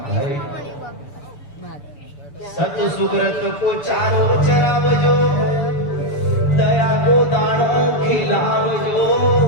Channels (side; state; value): right; late; 6.9 ms